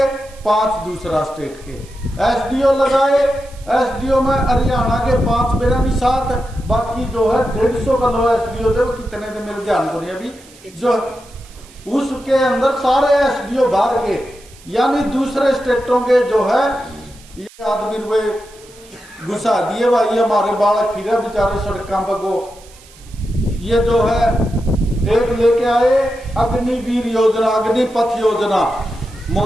5 दूसरा स्टेट के। SDO लगाए, SDO में हरियाणा के 5 मेरा नहीं 7, बाकी जो है 150 का लो SDO थे, वो कितने थे मेरे ध्यान को नहीं अभी, जो उसके अंदर सारे SDO बाहर के, यानी दूसरे स्टेटों के जो है ये आदमी रुपए घुसा दिए भाई। हमारे बालक फिर बेचारे सड़कों पर को, ये जो है एक लेके आए अग्निवीर योजना, अग्निपथ योजना,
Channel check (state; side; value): noise; right; hiss, 24 dB below the sound